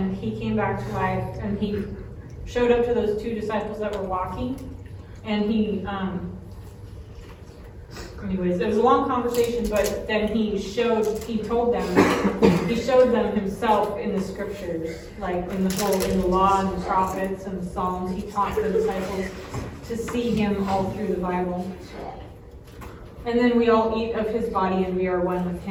he came back to life, and he showed up to those two disciples that were walking, and he anyways, it was a long conversation, but then he showed them himself in the scriptures, like in the law and the prophets and the Psalms. He taught the disciples to see him all through the Bible. And then we all eat of his body and we are one with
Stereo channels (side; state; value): both; identical; correlation 1.00